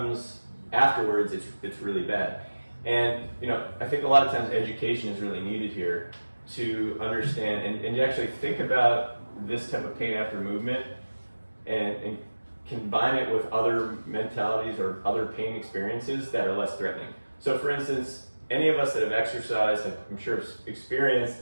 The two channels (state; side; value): inverted; both; correlation -1.00